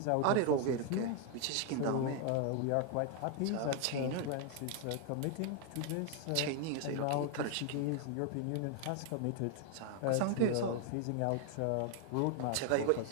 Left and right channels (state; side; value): different; both; correlation 0.00